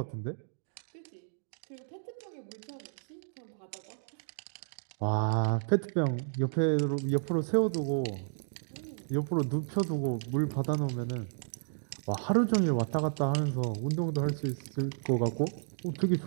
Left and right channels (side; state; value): left; silent; digital silence